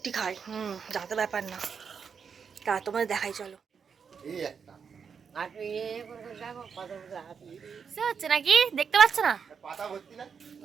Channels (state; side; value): quieter; left; 6.4 dB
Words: খায়, যাতে ব্যাপার না। তা তোমাদের দেখাই, চলো। হচ্ছে নাকি দেখতে পাচ্ছ না?